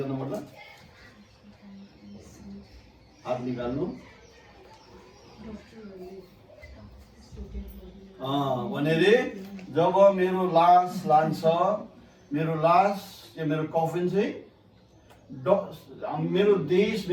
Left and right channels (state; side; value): identical; both; correlation 1.00